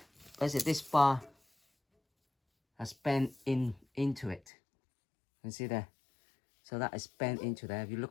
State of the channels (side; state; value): right; drops out; at 4.4 s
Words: basically this bar has bent into it. You can see there, so that is bent into there. If you